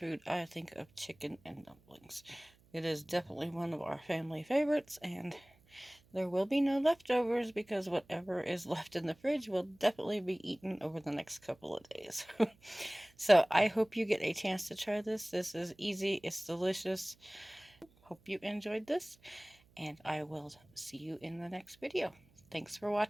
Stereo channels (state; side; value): noise; right; hum, 30 dB below the sound